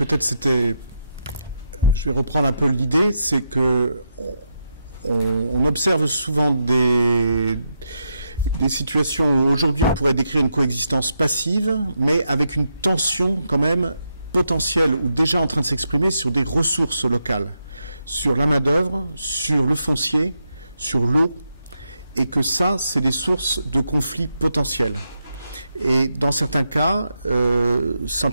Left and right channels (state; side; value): inverted; both; correlation -0.83